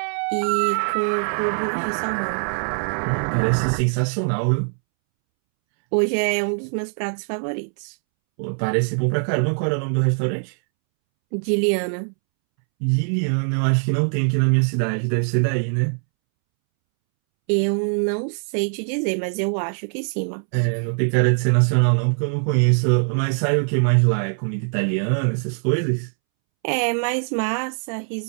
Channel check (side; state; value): left; silent; 64 dB below the other